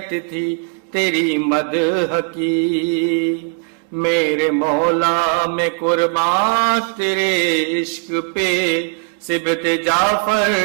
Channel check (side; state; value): left; quieter; 36.3 dB